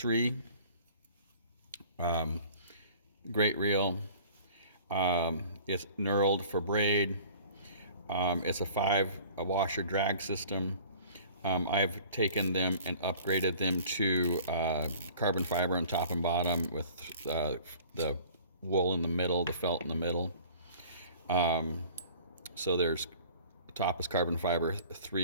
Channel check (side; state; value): both; inverted; correlation -0.48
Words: III. Great reel. It's knurled for braid. It's a washer drag system. I've taken them and upgraded them to carbon fiber on top and bottom with the wool in the middle, the felt in the middle. So the top is carbon fiber,